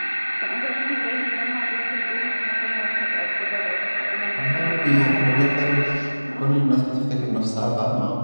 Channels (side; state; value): both; inverted; correlation -1.00